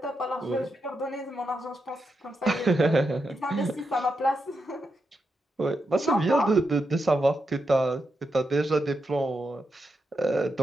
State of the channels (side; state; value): both; normal; correlation 0.85